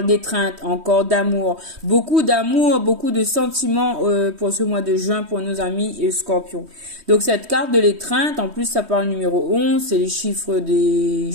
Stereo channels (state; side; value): late; left; 3.1 ms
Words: d'étreinte, encore d'amour, beaucoup de sentiments pour ce mois de juin pour nos amis scorpions. Donc cette carte de l'étreinte, en plus ça parle numéro 11, c'est les chiffres des